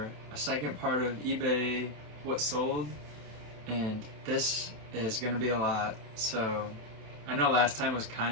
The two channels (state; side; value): late; left; 27 ms